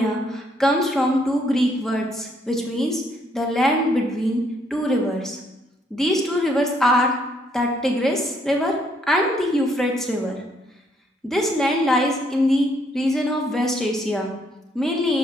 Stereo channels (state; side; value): normal; both; correlation 0.70